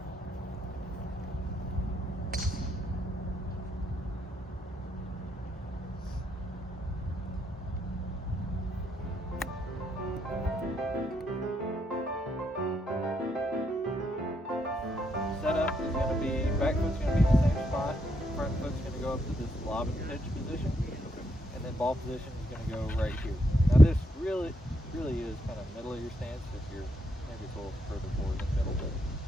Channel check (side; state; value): both; normal; correlation 0.77